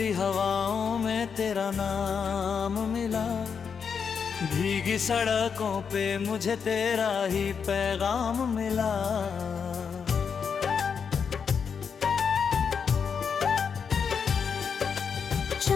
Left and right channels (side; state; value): right; quieter; 6.4 dB